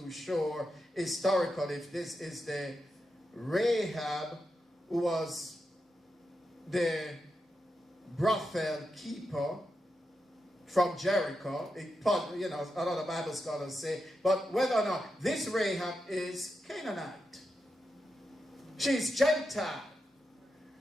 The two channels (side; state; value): both; normal; correlation 0.87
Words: sure historically if this is the Rahab who was the brothel keeper from Jericho. You know, a lot of Bible scholars say, but whether or not this Rahab is Canaanite. She's Gentile.